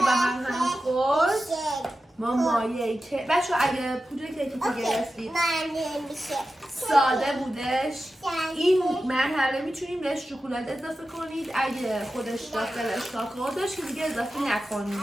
هم خورد ما مایه که بچه اگه پودر کیکی که گرفتید ساده بودش این مرحله میتونیم بهش شکلات اضافه کنید. اگه خودش داخلش کاکائو داشت که دیگه اضافه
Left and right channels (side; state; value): both; normal; correlation 0.92